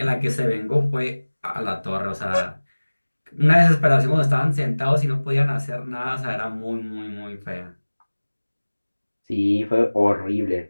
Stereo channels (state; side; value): inverted; both; correlation -1.00